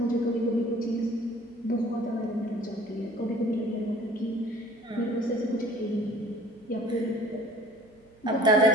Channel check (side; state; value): right; noise; hum, 29 dB below the sound